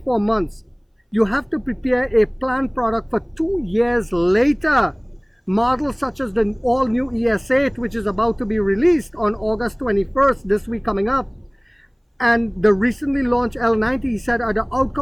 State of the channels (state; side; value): identical; both; correlation 1.00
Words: months. You have to prepare a planned product for 2 years later. Models such as the all-new ES8, which is about to be released on August 21st, this week coming up, and the recently launched L90, he said, are the